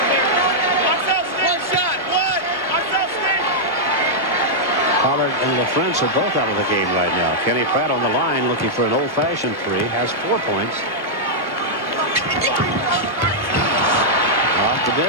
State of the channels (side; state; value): both; normal; correlation -0.07